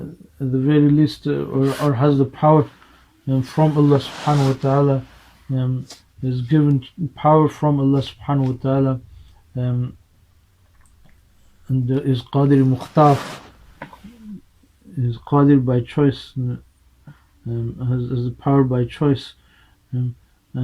at the very least, or has the power from Allah subhanahu wa ta'ala, is given power from Allah subhanahu wa ta'ala, and is qadir mukhtar, is qadir by choice, has the power by choice,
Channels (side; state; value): both; identical; correlation 1.00